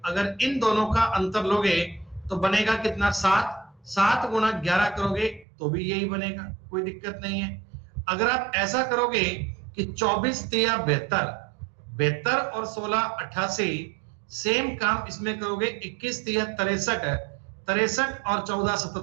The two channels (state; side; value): drops out; left; at 5.5 s